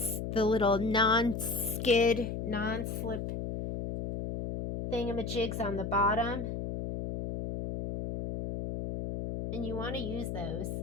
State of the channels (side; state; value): left; noise; hum, 4 dB below the sound